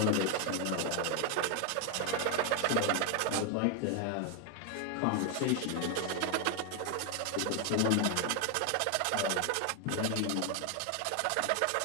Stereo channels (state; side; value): different; both; correlation 0.01